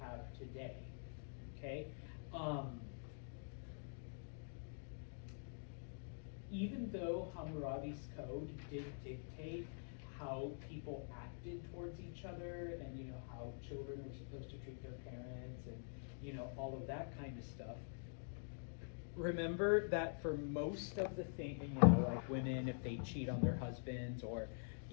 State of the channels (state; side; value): silent; right; digital silence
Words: today. Okay? Even though Hammurabi's code did dictate how people acted towards each other, and how children were supposed to treat their parents, and all of that kind of stuff. Remember that for most of the things, like women, if they cheat on their husbands, or